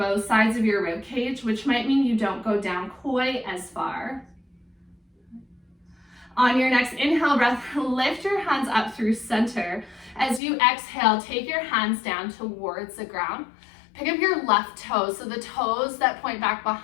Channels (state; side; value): drops out; right; at 10.4 s